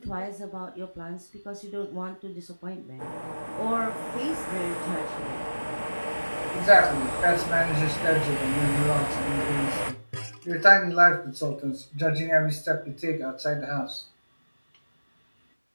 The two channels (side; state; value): both; inverted; correlation -1.00